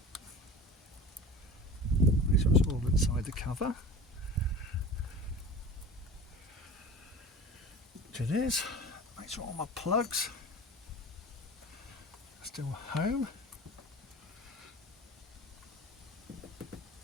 Make sure it's all inside the cover. Which it is. Make sure all my plugs are still home.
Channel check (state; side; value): normal; both; correlation 0.36